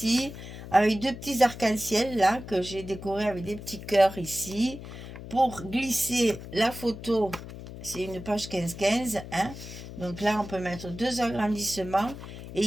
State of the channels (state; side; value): noise; left; hum, 12 dB below the sound